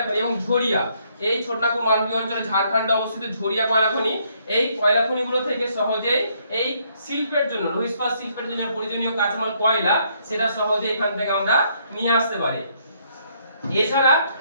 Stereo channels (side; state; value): both; inverted; correlation -0.70